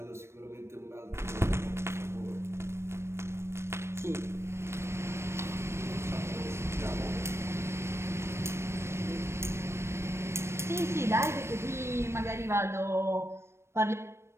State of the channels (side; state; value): left; late; 0.13 ms